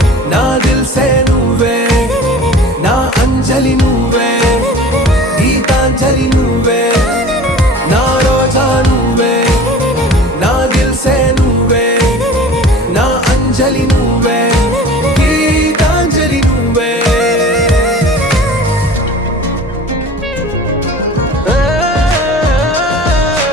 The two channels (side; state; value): both; normal; correlation 0.41